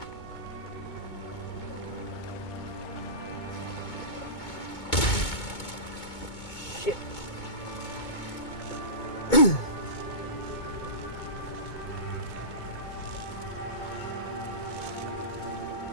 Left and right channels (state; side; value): late; right; 2.2 ms